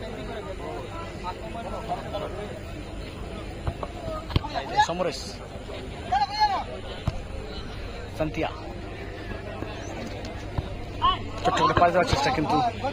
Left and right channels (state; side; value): identical; both; correlation 1.00